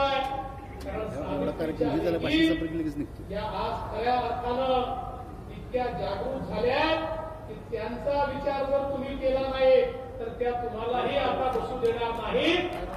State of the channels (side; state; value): both; identical; correlation 1.00